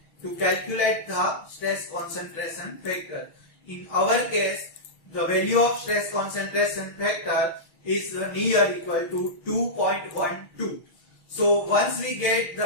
to calculate the stress concentration factor. In our case, the value of stress concentration factor is near equal to 2.12. So once we get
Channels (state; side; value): late; right; 6.2 ms